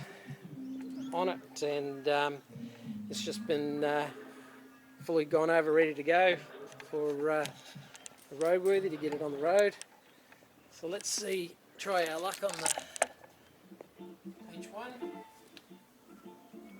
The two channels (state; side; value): identical; both; correlation 1.00